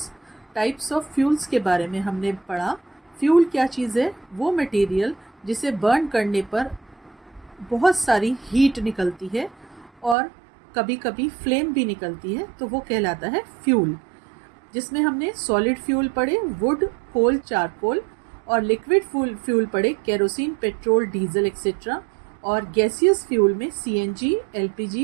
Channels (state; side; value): drops out; left; at 10.2 s